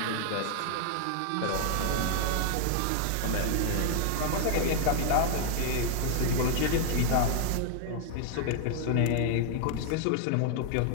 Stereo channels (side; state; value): both; different; correlation 0.00